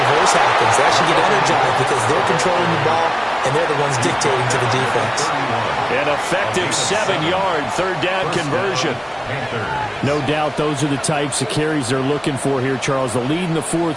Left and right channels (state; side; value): identical; both; correlation 1.00